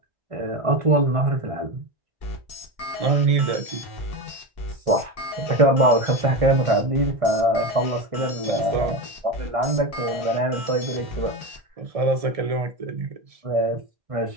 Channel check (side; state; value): left; late; 1.7 ms